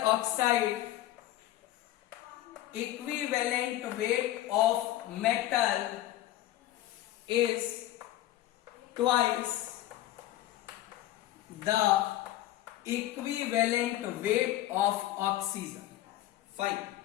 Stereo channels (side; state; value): right; quieter; 14.6 dB